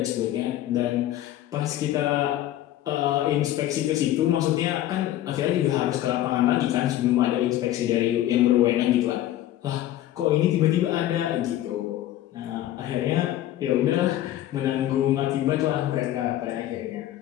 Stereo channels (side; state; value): right; quieter; 13.3 dB